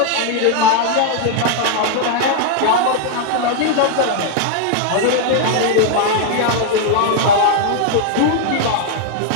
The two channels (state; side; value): different; both; correlation 0.00